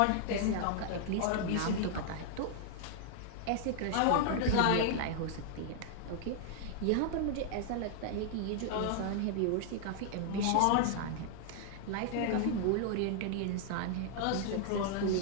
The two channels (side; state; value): both; different; correlation -0.01